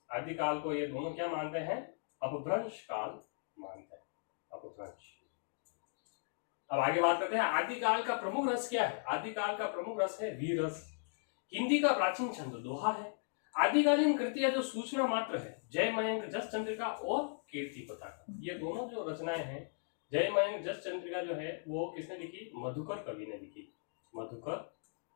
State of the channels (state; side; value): silent; right; digital silence